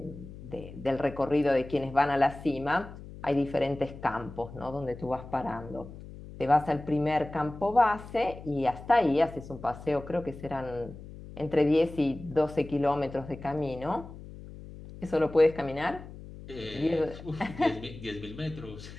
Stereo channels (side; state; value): left; noise; hum, 14 dB below the sound